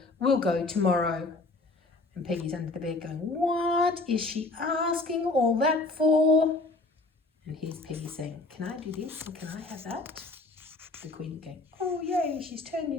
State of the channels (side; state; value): right; quieter; 3.2 dB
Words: We'll go tomorrow. And Peggy's under the bed going, what is she asking all that for? And here's Peggy saying, can I do this and can I have that? The Queen going, oh yay, she's turned